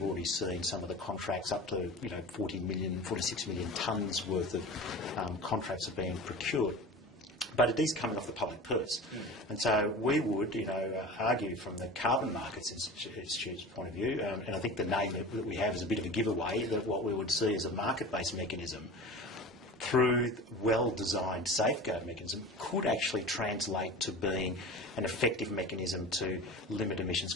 already seen some of the contracts up to 46 million tonnes worth of contracts are being procured. But it is coming off the public purse. And so we would, argue from the Carbon Markets Institute's point of view, and I think the name that we have is a bit of a giveaway, that what we would see as a market-based mechanism through well-designed safeguard mechanism could actually translate to being an effective mechanism to limit emissions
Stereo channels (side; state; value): both; normal; correlation 0.35